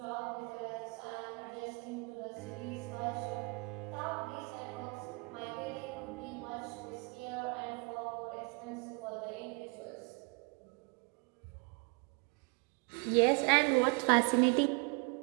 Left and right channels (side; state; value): left; quieter; 32.3 dB